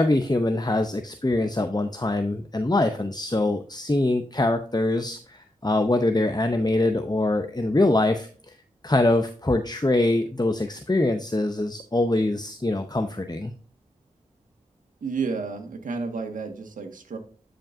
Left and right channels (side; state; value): both; normal; correlation 0.84